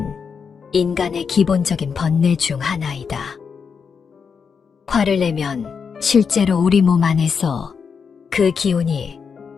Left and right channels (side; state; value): right; quieter; 6.1 dB